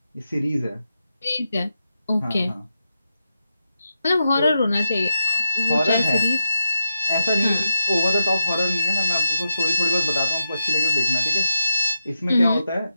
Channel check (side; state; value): both; inverted; correlation -0.85